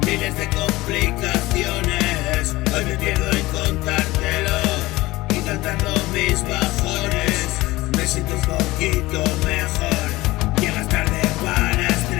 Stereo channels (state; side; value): quieter; right; 19.5 dB